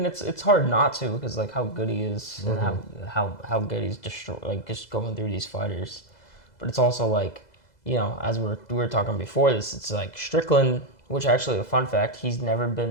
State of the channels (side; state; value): right; late; 2.0 ms